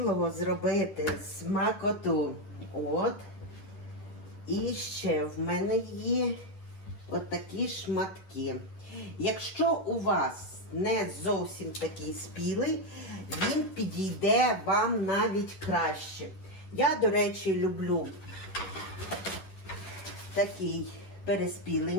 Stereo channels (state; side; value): late; right; 10 ms